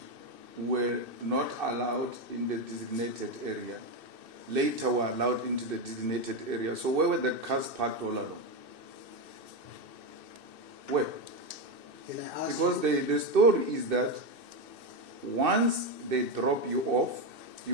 were not allowed in the designated area. Later were allowed into the designated area. So where were the cars parked all along? Where? Can I ask Because you? the story is that once they drop you off,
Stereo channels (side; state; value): left; late; 2.6 ms